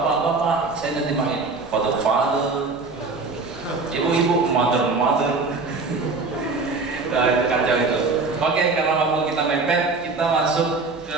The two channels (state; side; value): quieter; left; 3.9 dB